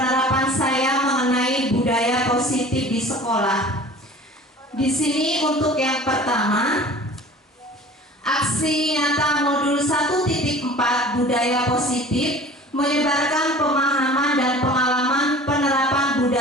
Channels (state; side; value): normal; both; correlation 0.43